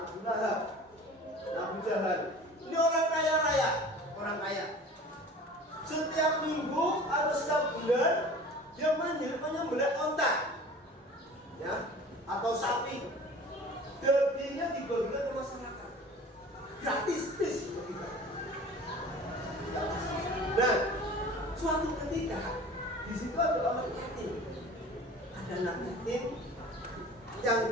Abu Lahab, Abu Jahal. Ini orang kaya raya, orang kaya. Setiap minggu atau setiap bulan dia menyembelih onta, ya, atau sapi. Dagingnya dibagikan ke masyarakat.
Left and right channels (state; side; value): normal; both; correlation 0.42